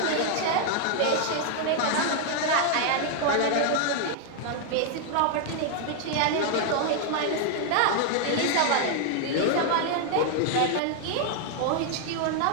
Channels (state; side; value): different; both; correlation 0.00